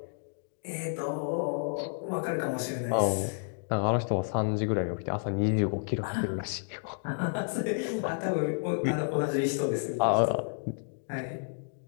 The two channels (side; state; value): right; silent; digital silence